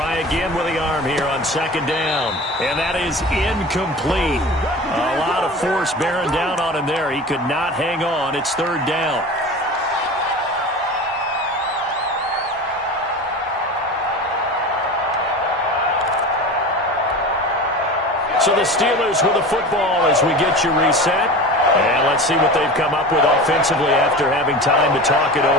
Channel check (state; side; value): normal; both; correlation 0.33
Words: again with the arm here on 2nd down. And that is incomplete. A lot of force bearing down on him there. He could not hang on. It's 3rd down. So the Steelers with the football as we get you reset. And let's see what they've come up with offensively after having time to talk it